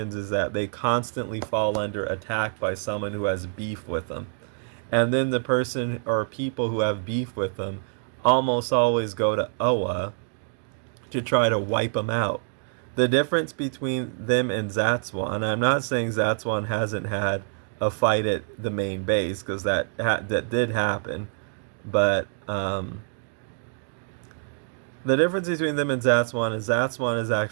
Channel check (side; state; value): left; silent; digital silence